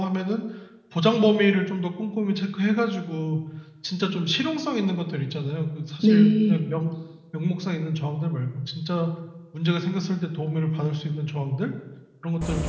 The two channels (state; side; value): identical; both; correlation 1.00